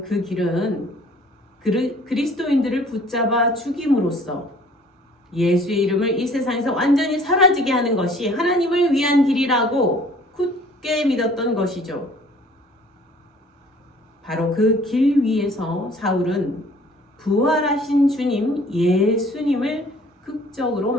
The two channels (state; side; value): normal; both; correlation 0.53